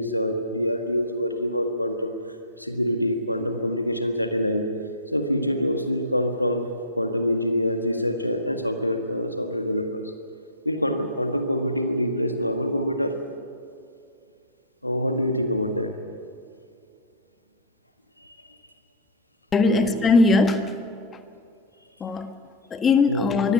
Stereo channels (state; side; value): normal; both; correlation -0.16